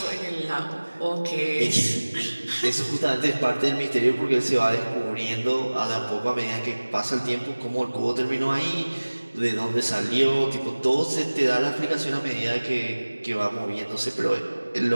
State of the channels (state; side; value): inverted; both; correlation -1.00